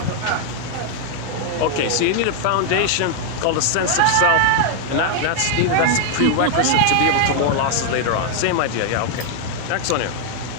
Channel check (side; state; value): both; different; correlation 0.00